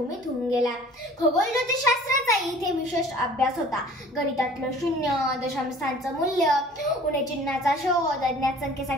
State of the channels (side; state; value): both; normal; correlation 0.49